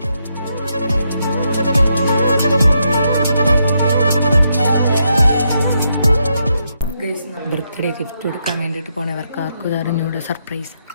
ബർത്ത്ഡേ ഗിഫ്റ്റ് കൊടുക്കാൻ വേണ്ടിയിട്ട് പോണവർക്ക് ആർക്കും അറിഞ്ഞൂടെ സർപ്രൈസ്.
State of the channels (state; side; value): inverted; both; correlation -0.80